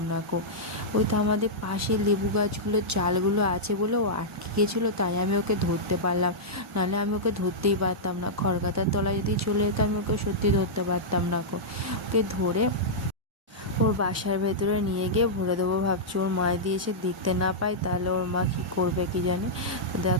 না কো। ওই তো আমাদের পাশে লেবু গাছগুলোর চালগুলো আছে বলে ও আটকে গেছিলো, তাই আমি ওকে ধরতে পারলাম, নাহলে আমি ওকে ধরতেই পারতাম না। খড়গাতার তলায় যদি চলে যেত আমি ওকে সত্যি ধরতে পারতাম না কো। ওকে ধরে ওর বাসার ভেতরে নিয়ে গিয়ে ভরে দেবো ভাবছি, ওর মা দিয়ে এসে দেখতে না পাই তাহলে ওর মা কী করবে কি জানি। তো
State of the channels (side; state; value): both; normal; correlation -0.10